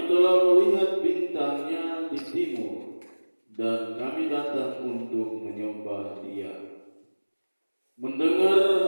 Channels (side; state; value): both; inverted; correlation -1.00